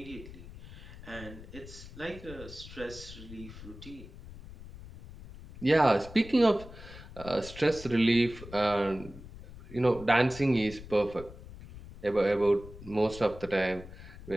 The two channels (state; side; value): noise; left; rumble, 15 dB below the sound